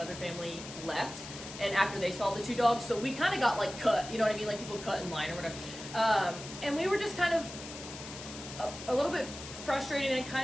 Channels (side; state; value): left; noise; hiss, 12 dB below the sound